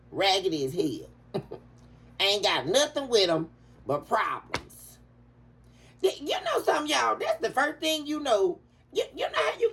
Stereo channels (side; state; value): both; identical; correlation 1.00